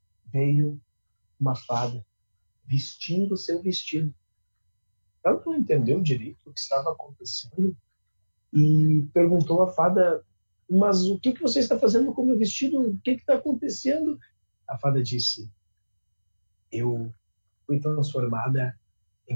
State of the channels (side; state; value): both; inverted; correlation -1.00